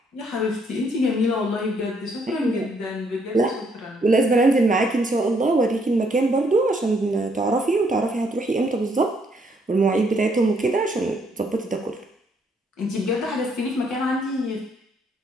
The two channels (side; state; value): both; normal; correlation 0.70